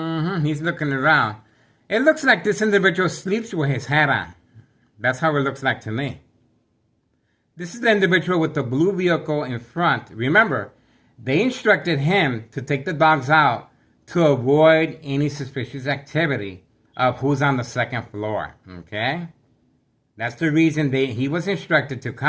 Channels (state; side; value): identical; both; correlation 1.00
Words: He's looking around. It looks like this individual sleeps with his hat on. That's how it looks like to me. This is the individual with the blue vehicle in front. Remember, they instructed him to take the dogs out to avoid any suspicious activity of who's on the second floor. Okay? That's the reason he was instructed to